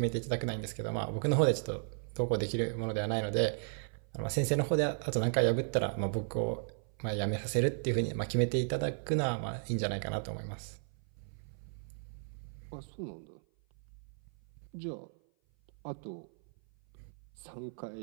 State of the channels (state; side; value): silent; left; 54 dB below the other